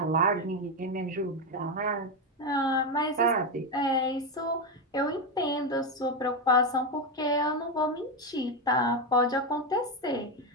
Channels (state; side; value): normal; both; correlation 0.10